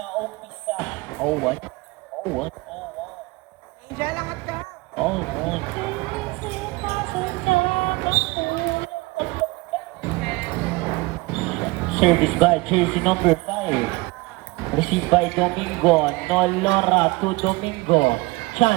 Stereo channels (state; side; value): quieter; left; 23.7 dB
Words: umpisa. Oh, what? Oh, what? Angel, angat ka. Oh, what? Service by jersey number 5. Received by Domingo. Nolora to Domingo.